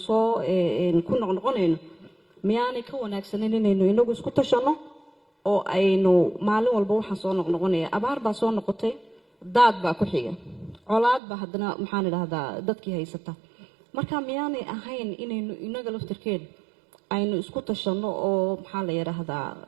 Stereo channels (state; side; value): drops out; left; at 11.2 s